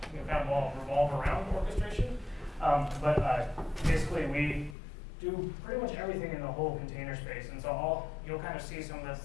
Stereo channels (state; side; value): drops out; right; at 4.8 s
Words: kind of revolve around orchestration. But basically, we do pretty much everything in the whole container space, and so you'll kind of see some of the